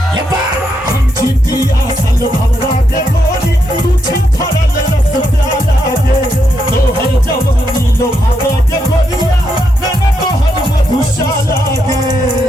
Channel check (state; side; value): normal; both; correlation 0.81